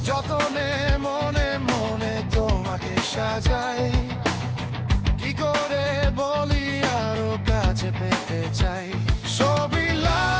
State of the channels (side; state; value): both; identical; correlation 1.00